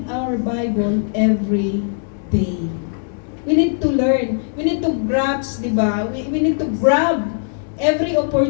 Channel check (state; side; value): silent; right; 66 dB below the other